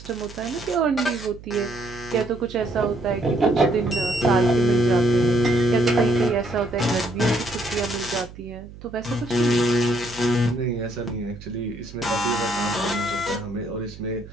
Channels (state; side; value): noise; right; hum, 17 dB below the sound